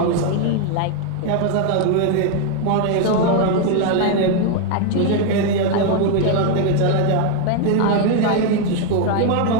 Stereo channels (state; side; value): different; both; correlation 0.01